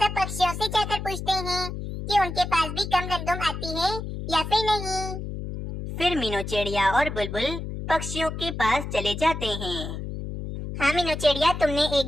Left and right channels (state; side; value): noise; left; hum, 6 dB below the sound